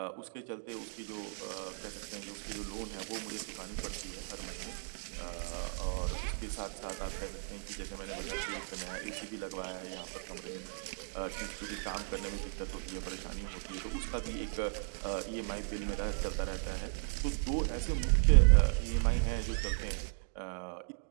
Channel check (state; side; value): silent; left; digital silence